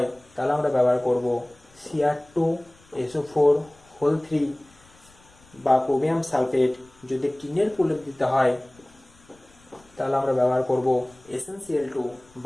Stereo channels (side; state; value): left; noise; rumble, 28 dB below the sound